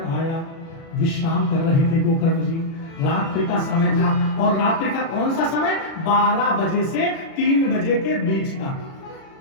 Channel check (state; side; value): late; right; 36 ms